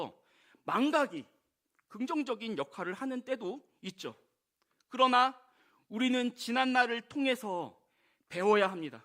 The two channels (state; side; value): identical; both; correlation 1.00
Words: 망각이 긍정적인 역할을 하는 때도 있죠. 그러나 우리는 지난날을 통해서 배워야 합니다.